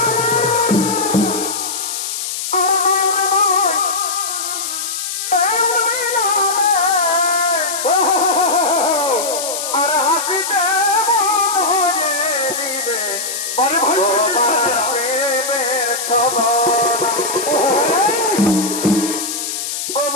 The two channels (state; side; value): noise; left; hiss, 4 dB below the sound